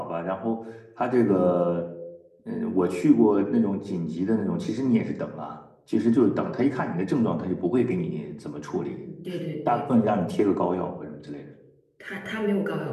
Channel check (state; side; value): identical; both; correlation 1.00